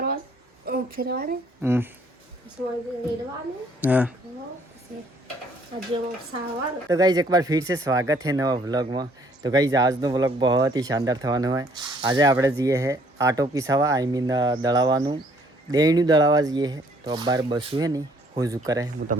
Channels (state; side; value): normal; both; correlation 0.62